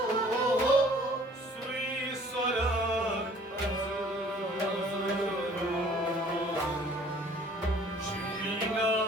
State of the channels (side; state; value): both; normal; correlation 0.54